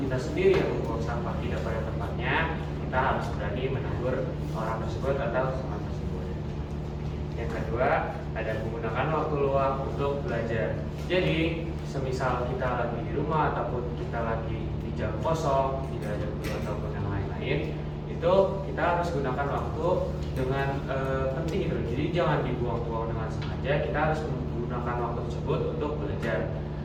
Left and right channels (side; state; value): both; identical; correlation 1.00